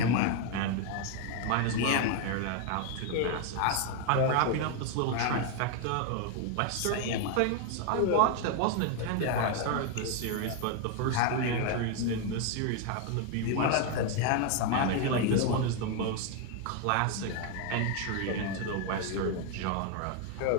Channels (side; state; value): both; different; correlation 0.01